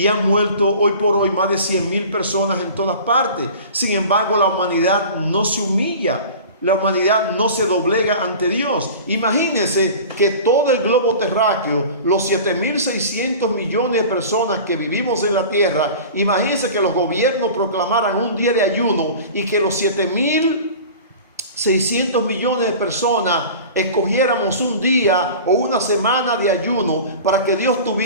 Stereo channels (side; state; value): both; inverted; correlation -0.38